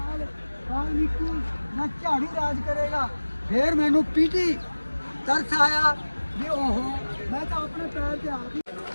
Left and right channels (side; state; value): both; inverted; correlation -1.00